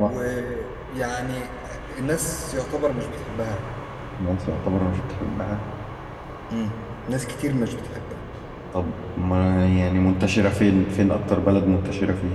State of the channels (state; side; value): identical; both; correlation 1.00